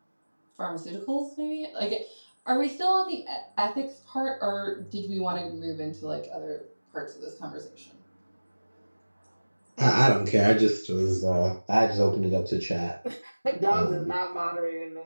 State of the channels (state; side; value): inverted; both; correlation -1.00